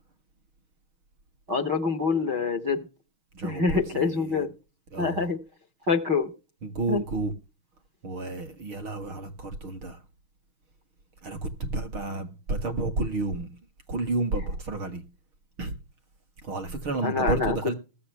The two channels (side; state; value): left; late; 6.3 ms